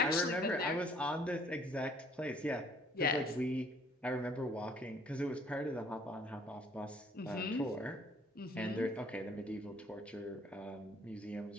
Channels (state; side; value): normal; both; correlation 0.59